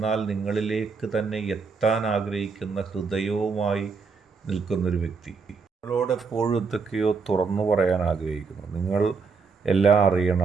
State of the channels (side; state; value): left; quieter; 5.0 dB